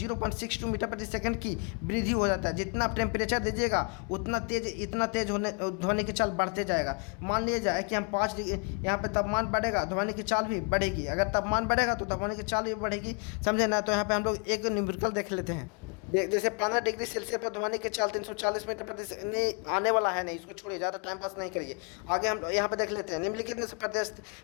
मीटर प्रति सेकंड की वृद्धि हो जाता है। जितना आप टेम्परेचर दीजिएगा इतना तेज होने ध्वनि की चाल बढ़ते जाएगा। मान लिया जाए कि हम 5 डिग्री यहाँ पे तापमान बढ़ेगा, ध्वनि की चाल भी बढ़ेगी। अगर तापमान बढ़ेगा तो ध्वनि की चाल भी बढ़ेगी, समझे ना। तो यहाँ पे हम लोग एक न्यूमेरिकल देख लेते हैं। जैसे 15 डिग्री सेल्सियस पर ध्वनि की चाल 340 मीटर प्रति सेकंड नहीं आने वाला है, नहीं, इसको छोड़िए, ज़्यादा टाइम पास नहीं करिए। आगे हम यहाँ पे देख लेते हैं। निम्नलिखित में से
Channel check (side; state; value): right; quieter; 36.8 dB